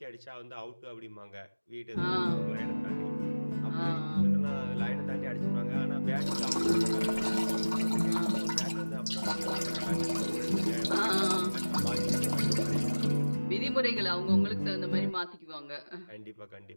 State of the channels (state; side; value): inverted; both; correlation -1.00